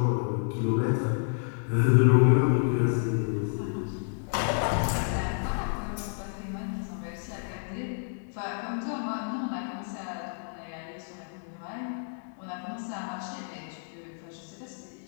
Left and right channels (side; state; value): right; silent; digital silence